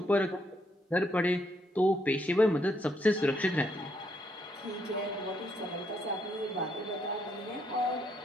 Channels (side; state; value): both; normal; correlation 0.75